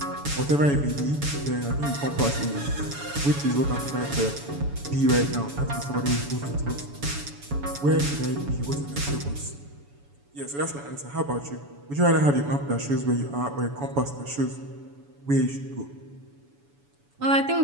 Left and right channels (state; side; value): late; left; 7.0 ms